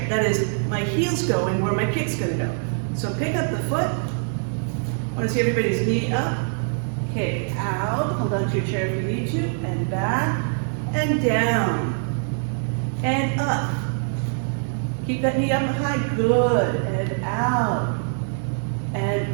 That is, my heel's going where my kick's going to go. So pick up the foot. I want to see everybody's knee up. Kick out. Hold on to your chair if you need to. And back. And down. And up. Keep that knee up high. Good. And out.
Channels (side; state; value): left; silent; digital silence